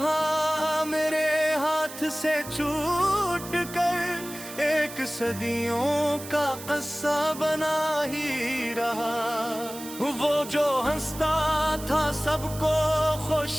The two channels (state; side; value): noise; right; hiss, 13 dB below the sound